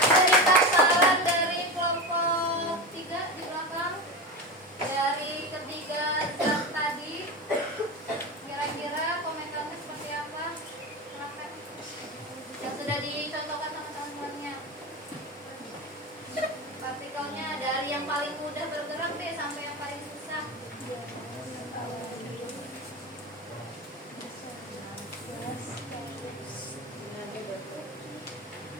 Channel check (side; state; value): both; normal; correlation 0.22